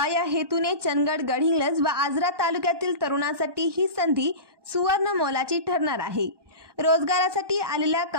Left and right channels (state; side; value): late; left; 1.2 ms